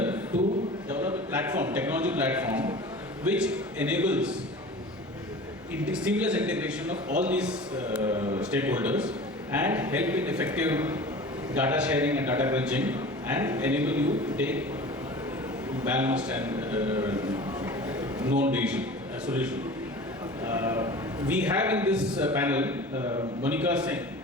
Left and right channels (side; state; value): both; normal; correlation 0.38